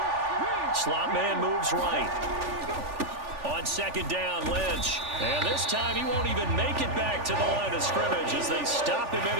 Slot man moves right. On second down, Lynch. And this time he won't even make it back to the line of scrimmage as they stop him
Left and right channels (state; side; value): late; left; 3.4 ms